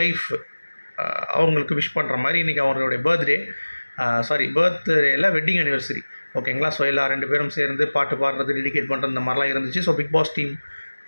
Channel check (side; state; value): both; inverted; correlation -1.00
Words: அவங்களுக்கு விஷ் பண்ணுற மாதிரி இன்றைக்கி அவங்களுடைய பர்த்டேயில் வெட்டிங் அனிவர்சரி. ஓகேங்களா? ஸோ எல்லா 2 பேரும் சேர்ந்து பாட்டு பாடுறது, டெடிகேட் பண்ணுறது இந்த மாதிரிலாம் இருந்துச்சு. ஸோ பிக் பாஸ் டீம்